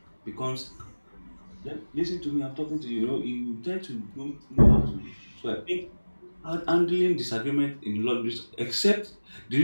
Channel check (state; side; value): inverted; both; correlation -1.00